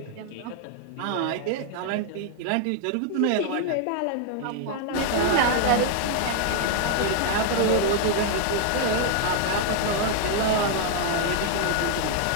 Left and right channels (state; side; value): different; both; correlation 0.00